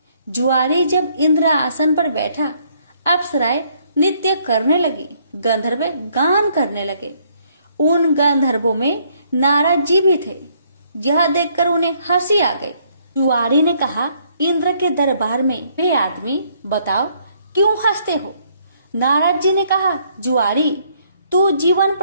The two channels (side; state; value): both; inverted; correlation -0.67